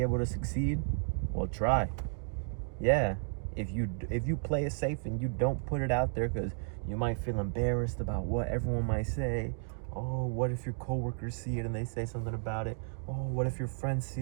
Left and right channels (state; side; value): silent; left; digital silence